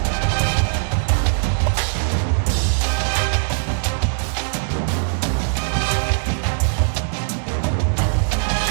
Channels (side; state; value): left; silent; digital silence